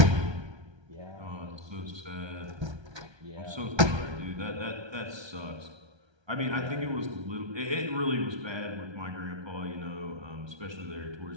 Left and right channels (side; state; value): left; late; 1.3 ms